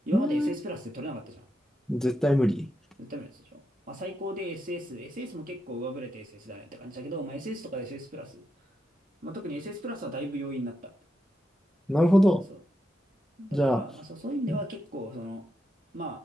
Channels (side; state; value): both; normal; correlation 0.85